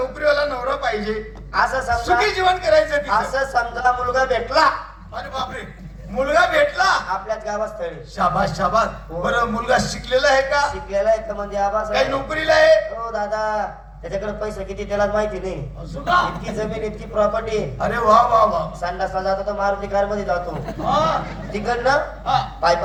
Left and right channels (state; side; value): identical; both; correlation 1.00